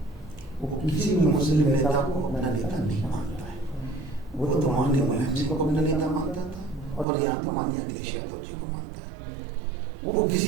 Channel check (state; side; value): drops out; left; at 7.1 s